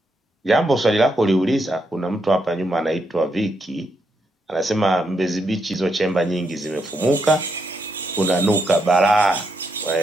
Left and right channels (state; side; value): normal; both; correlation 0.80